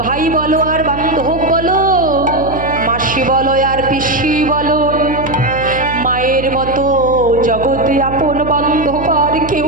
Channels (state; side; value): noise; right; hum, 10 dB below the sound